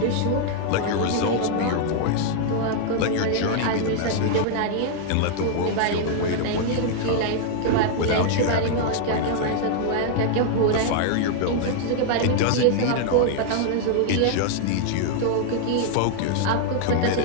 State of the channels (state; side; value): different; both; correlation 0.00